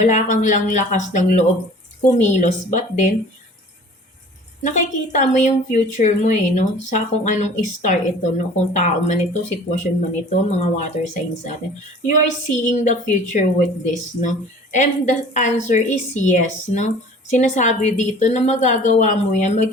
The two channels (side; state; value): both; normal; correlation 0.46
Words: kang lang lakas ng loob kumilos, but then nakikita mo yung future mo, 'no, sa kung anong star ito 'no, kung tao man ito, sitwasyon man ito, mga water signs natin. You are seeing the future with this 'no, and the answer is yes 'no. Sinasabi dito na magagawa mo 'yan,